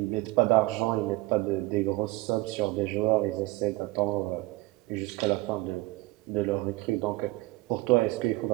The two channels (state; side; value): quieter; left; 20.7 dB